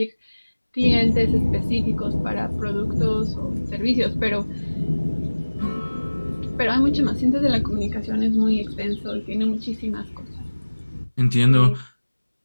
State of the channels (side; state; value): both; inverted; correlation -1.00